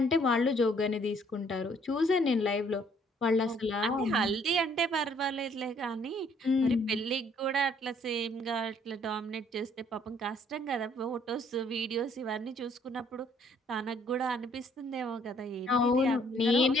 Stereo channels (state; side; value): normal; both; correlation 0.63